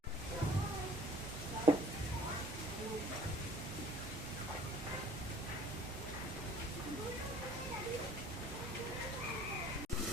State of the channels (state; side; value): normal; both; correlation 0.51